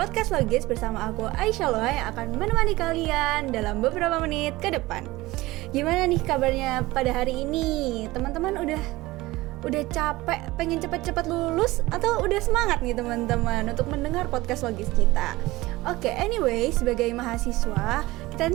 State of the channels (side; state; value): left; quieter; 19.4 dB